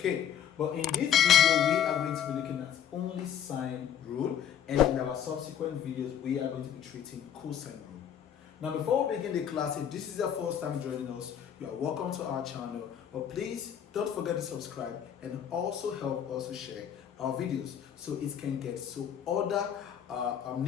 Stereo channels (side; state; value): right; quieter; 9.2 dB